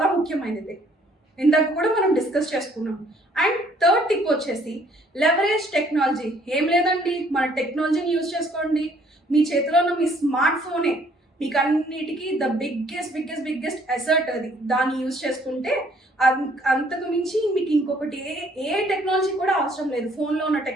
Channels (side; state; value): both; normal; correlation 0.62